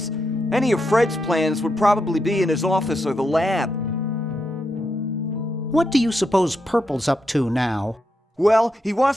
Any of Fred's plans would probably be in his office or the lab. What do you suppose Purple's up to now? Well, he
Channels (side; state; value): both; normal; correlation 0.83